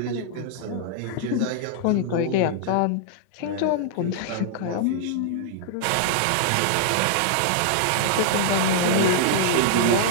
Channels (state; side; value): different; both; correlation -0.01